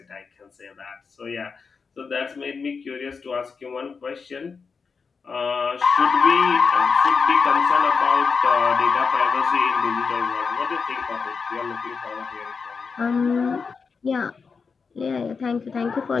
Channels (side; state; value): right; quieter; 5.2 dB